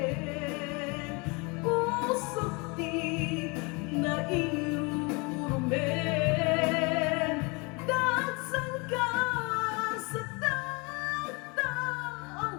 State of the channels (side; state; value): right; quieter; 29.1 dB